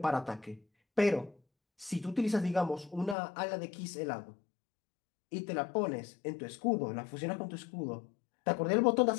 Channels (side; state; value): right; drops out; at 3.2 s